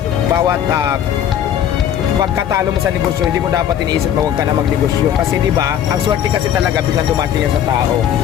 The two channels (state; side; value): quieter; right; 10.0 dB